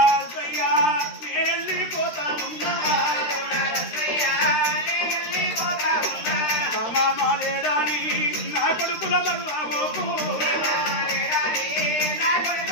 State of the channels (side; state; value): right; late; 13 ms